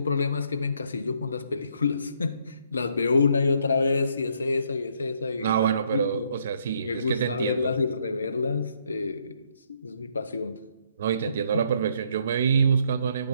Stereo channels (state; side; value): inverted; both; correlation -0.70